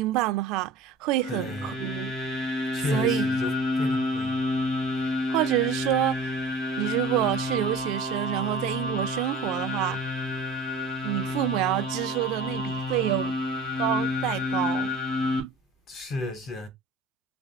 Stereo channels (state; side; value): quieter; left; 3.4 dB